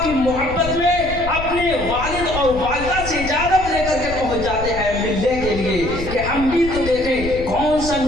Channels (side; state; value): left; noise; rumble, 9 dB below the sound